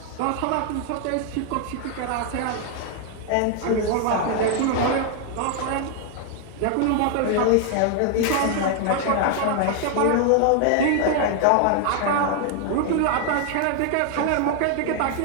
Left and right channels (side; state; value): both; different; correlation 0.00